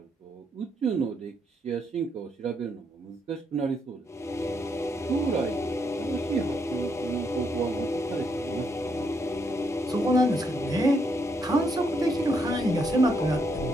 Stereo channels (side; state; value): both; normal; correlation 0.76